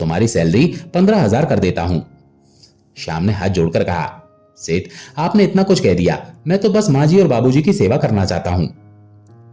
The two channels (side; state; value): both; identical; correlation 1.00